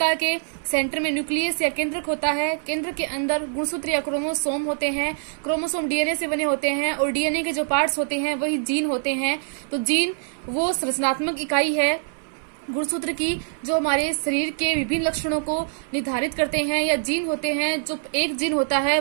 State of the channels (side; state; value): left; silent; 57 dB below the other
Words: के सेंटर में न्यूक्लियस या केंद्रक होता है। केंद्र के अंदर गुणसूत्र या क्रोमोसोम होते हैं। क्रोमोसोम डीएनए से बने होते हैं और डीएनए के जो पार्ट्स होते हैं वही जीन होते हैं। तो जीन वो संरचनात्मक इकाई है गुणसूत्र की, जो हमारे शरीर के विभिन्न लक्षणों को निर्धारित करते हैं। या जीन होते हैं, जो एक जीन होता है